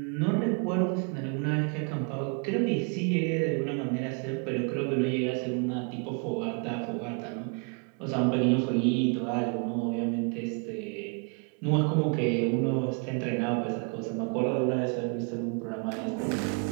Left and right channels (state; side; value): quieter; left; 37.3 dB